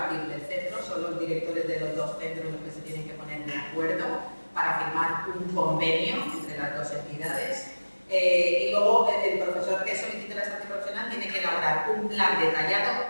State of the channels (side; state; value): both; inverted; correlation -1.00